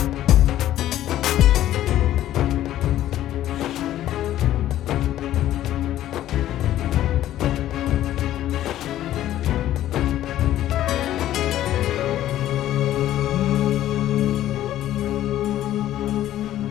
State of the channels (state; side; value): quieter; right; 13.0 dB